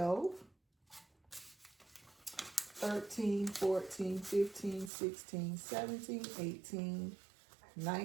13, 14, 15, 16, 17, 18,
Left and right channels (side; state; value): left; drops out; at 4.9 s